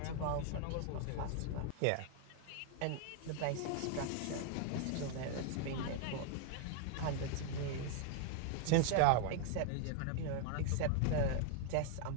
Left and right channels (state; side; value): different; both; correlation 0.00